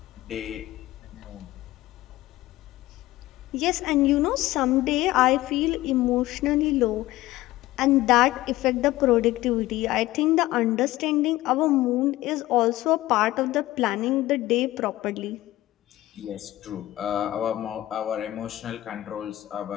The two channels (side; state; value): right; quieter; 16.6 dB